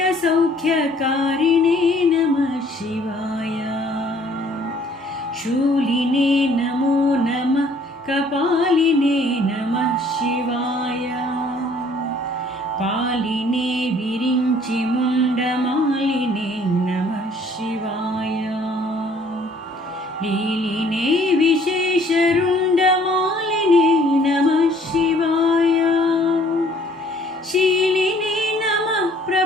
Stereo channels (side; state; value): both; normal; correlation 0.59